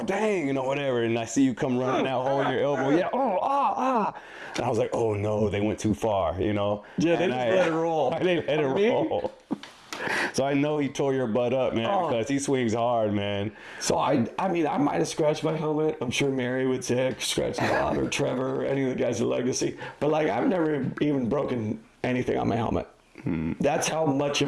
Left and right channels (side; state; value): both; identical; correlation 1.00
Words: dang, you know, whatever. And I see you come running out, holding your elbow. Yeah, And I was like, oh, no, they went too far, you know. Yeah, they just let it roll. They let it roll. So I know he tore your butt up, man, because he swings hard, man. So, I mean, I might have scratched my helmet. I'm sure Mary would say I scratched a lot, or Trevor, or any of the guys at Legacy. But, like, I've never even broken anything on my helmet. That's how much